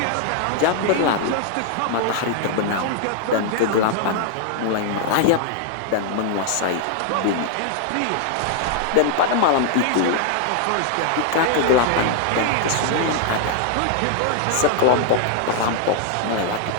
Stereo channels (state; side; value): different; both; correlation 0.00